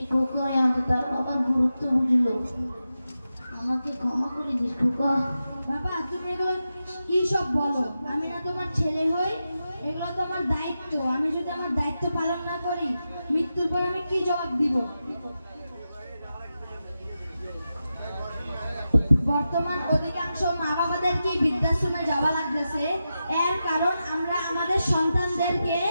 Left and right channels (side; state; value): both; inverted; correlation -0.90